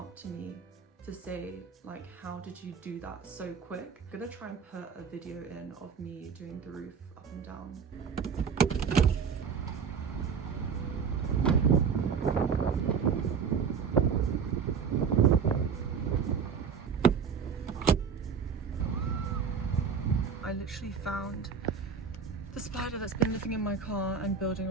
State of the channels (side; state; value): left; quieter; 6.3 dB